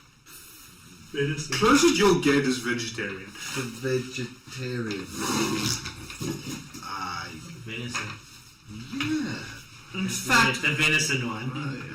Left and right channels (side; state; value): both; identical; correlation 1.00